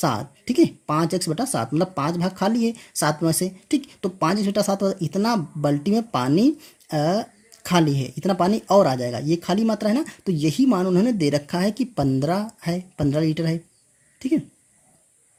ठीक है। 5x/7 मतलब 5 भाग खाली है 7 में से, ठीक। तो 5x/7 इतना बाल्टी में पानी खाली है, इतना पानी और आ जाएगा, ये खाली मात्रा है ना। तो यही मान उन्होंने दे रखा है कि 15 है, 15 लीटर है, ठीक है।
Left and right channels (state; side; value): identical; both; correlation 1.00